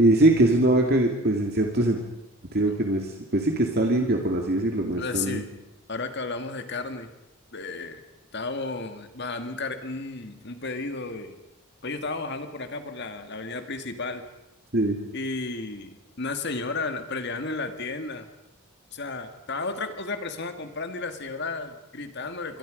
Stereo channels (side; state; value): both; normal; correlation 0.37